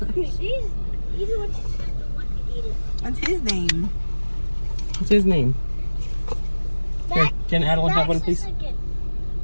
He's the one to eat it. What's his name? What's his name? Here, can Adeline have one, please?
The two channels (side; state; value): both; inverted; correlation -1.00